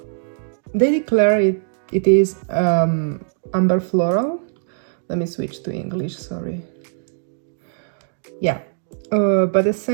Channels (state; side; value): silent; left; digital silence